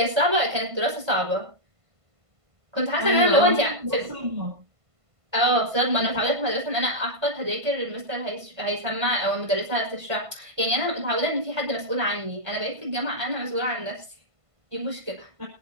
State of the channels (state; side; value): late; left; 1.5 ms